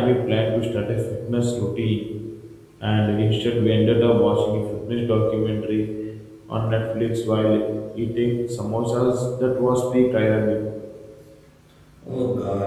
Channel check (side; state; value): both; identical; correlation 1.00